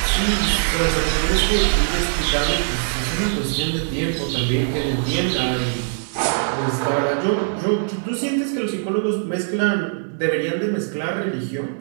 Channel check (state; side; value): silent; left; digital silence